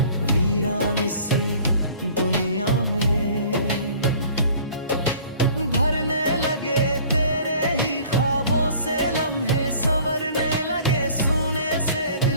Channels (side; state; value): both; inverted; correlation -0.50